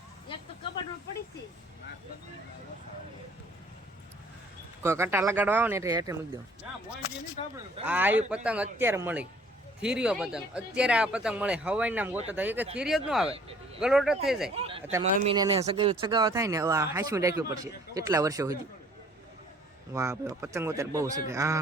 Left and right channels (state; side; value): normal; both; correlation 0.56